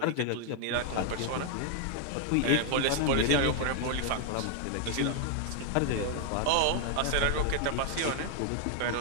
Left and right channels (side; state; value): both; different; correlation 0.00